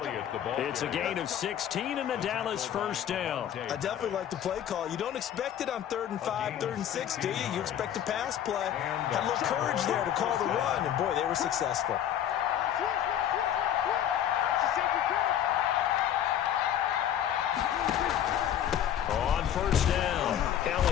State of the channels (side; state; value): right; quieter; 10.3 dB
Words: It's a gain of 16 and a Dallas 1st down. I definitely like the play call. You don't expect it on 3rd and 5, 3rd and 6, do you? You expect a pass play. Had a little courage there to call the run, and boy, they were successful. On 1st down,